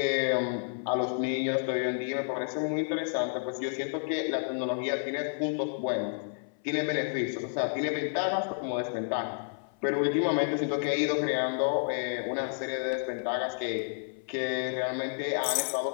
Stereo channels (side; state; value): right; silent; 57 dB below the other